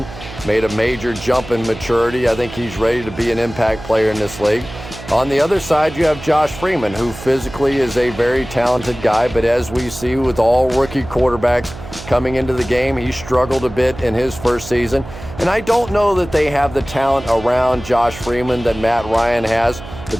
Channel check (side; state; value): right; noise; hum, 14 dB below the sound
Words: made a major jump in maturity. I think he's ready to be an impact player in this league. On the other side, you have Josh Freeman, who physically is a very talented guy, but as we see with all rookie quarterbacks coming into the game, he struggled a bit in his first season. And I don't know that they have the talent around Josh Freeman that Matt Ryan has,